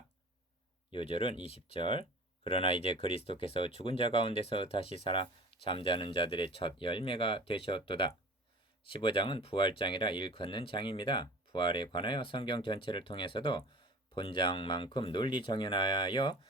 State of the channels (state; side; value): normal; both; correlation 0.41